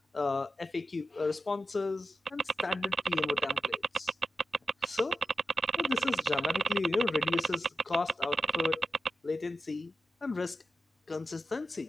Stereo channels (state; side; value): normal; both; correlation 0.90